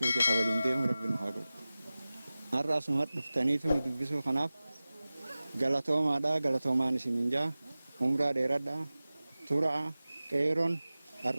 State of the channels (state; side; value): inverted; both; correlation -0.97